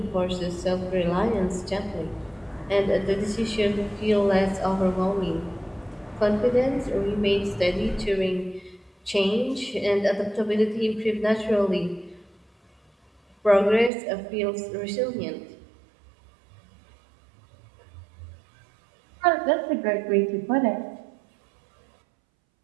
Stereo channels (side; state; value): left; drops out; at 13.9 s